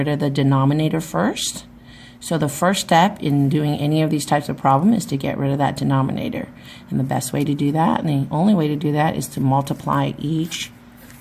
of the denominator first. So the first step in doing any of these types of problem is to get rid of that denominator. And the best way to do that, and the only way to do that, is to multiply each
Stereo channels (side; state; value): both; identical; correlation 1.00